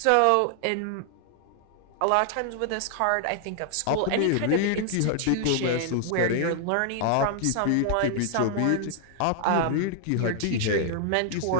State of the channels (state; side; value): different; both; correlation 0.00